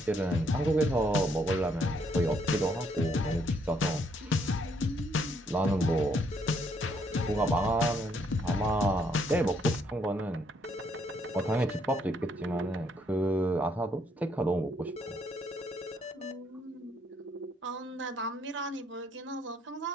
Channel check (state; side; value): normal; both; correlation 0.71